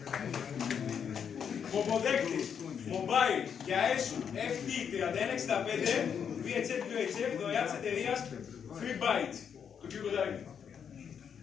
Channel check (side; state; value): right; quieter; 7.5 dB